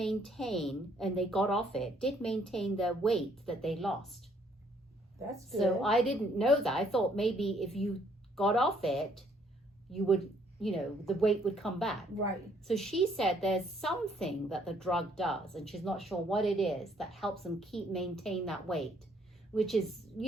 and they got off it, did maintain their weight that they lost. that's good. So I didn't know that. I thought maybe if you got off it, you would, the weight would come back. Right, So she said there's something that the drug does, and she's not sure what it is, that helps them maintain that weight, which is,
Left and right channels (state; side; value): normal; both; correlation 0.66